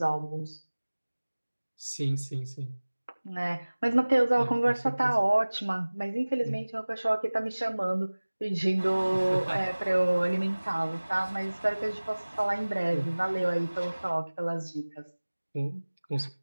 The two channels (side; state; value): both; inverted; correlation -1.00